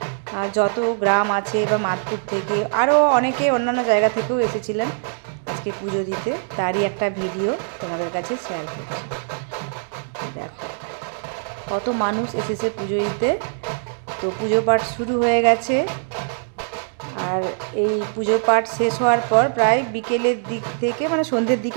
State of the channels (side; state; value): left; silent; 64 dB below the other